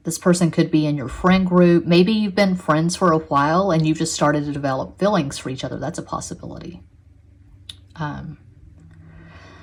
This person could be in your friend group. Maybe you've been friends for a while and you've just started to develop feelings for each other. That's a possibility. I'm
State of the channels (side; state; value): both; identical; correlation 1.00